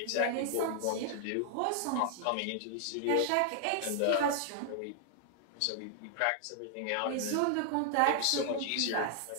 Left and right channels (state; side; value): different; both; correlation 0.00